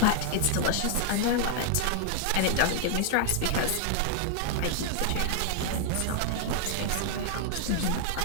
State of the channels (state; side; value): different; both; correlation -0.01